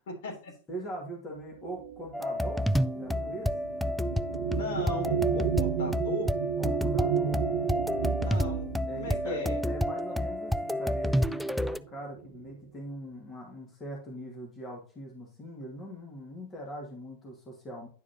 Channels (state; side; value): normal; both; correlation 0.63